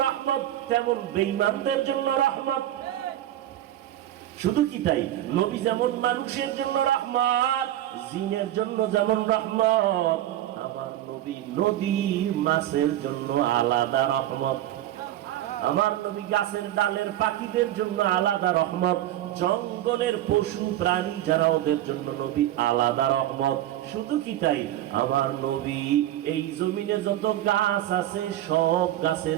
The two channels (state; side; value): quieter; left; 13.2 dB